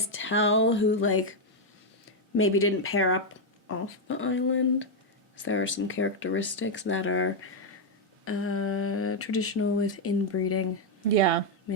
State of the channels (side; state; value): both; normal; correlation 0.00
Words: tell who like maybe didn't pair up off the island. So there are some characteristics that are traditional with inbreeding. Yeah.